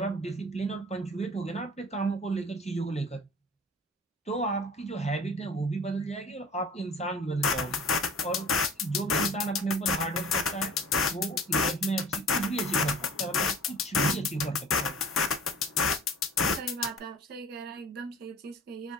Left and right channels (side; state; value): both; normal; correlation 0.44